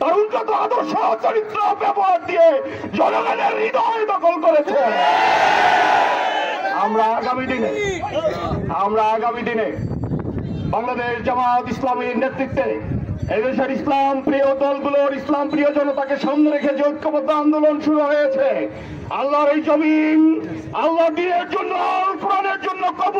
উন্নত আদর্শ চরিত্র ব্যবহার দিয়ে জনগণের হৃদয় দখল করেছে। আমরা আগামী দিনে বাংলাদেশ জামাত ইসলামীর নেতৃত্বে এদেশের ইসলাম প্রিয় দলগুলোর ইসলাম প্রিয় জনতাকে সামনে রেখে যে ঐক্যবদ্ধ আন্দোলন শুরু হয়েছে, আল্লাহর এই জমিন আল্লাহ দ্বীনের জন্য, কোরআনের জন্য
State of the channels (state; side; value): identical; both; correlation 1.00